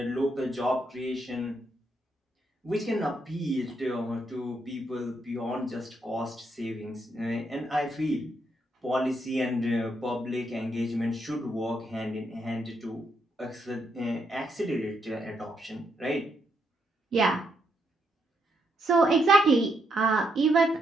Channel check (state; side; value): normal; both; correlation 0.78